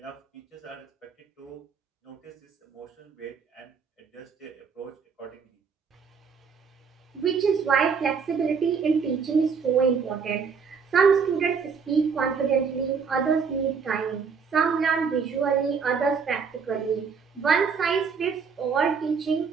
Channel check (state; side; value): quieter; left; 5.9 dB